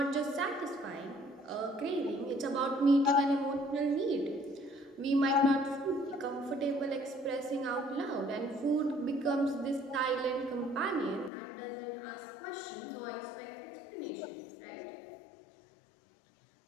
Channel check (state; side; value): drops out; right; at 11.3 s